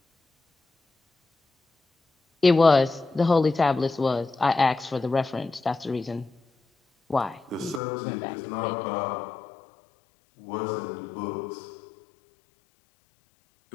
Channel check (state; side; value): drops out; right; at 7.8 s